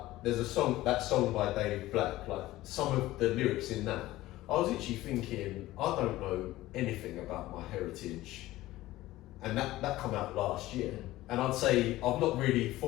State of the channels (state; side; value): quieter; right; 16.7 dB